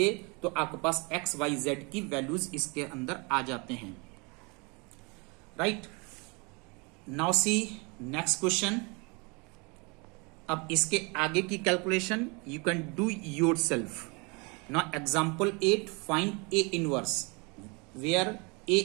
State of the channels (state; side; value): quieter; left; 29.9 dB